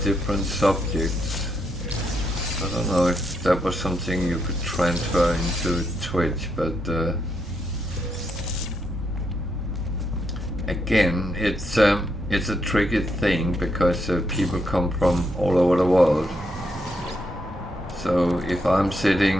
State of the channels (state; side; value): normal; both; correlation 0.79